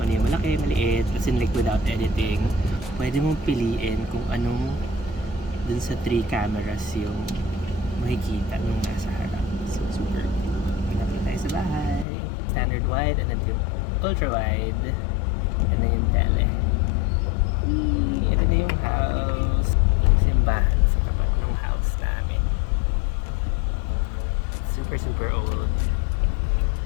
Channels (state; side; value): drops out; right; at 12.1 s